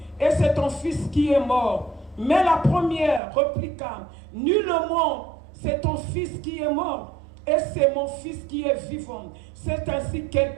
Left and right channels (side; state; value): left; drops out; at 3.2 s